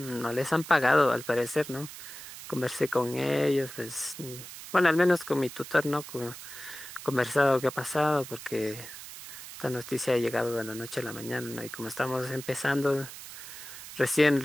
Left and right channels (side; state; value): right; noise; hiss, 13 dB below the sound